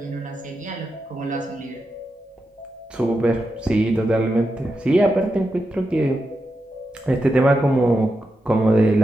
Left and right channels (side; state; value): both; normal; correlation 0.87